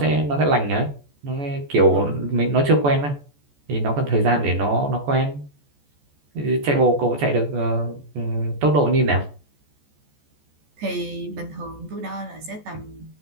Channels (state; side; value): late; left; 14 ms